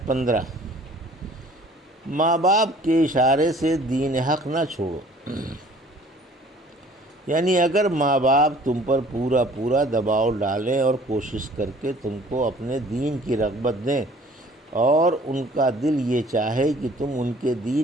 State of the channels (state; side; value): normal; both; correlation 0.52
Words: 15، ماں باپ کے اشارے سے دین حق نہ چھوڑو، یعنی اگر ماں باپ تم پر پورا پورا دباؤ ڈالیں اور کوشش کر کے تم کو اپنے دین کی رغبت دیں اور ان کا دل یہ چاہے کہ تم ان کے